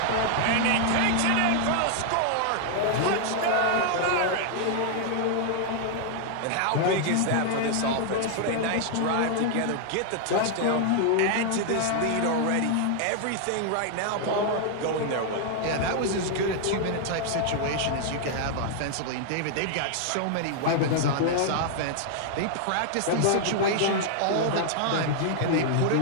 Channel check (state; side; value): different; both; correlation 0.00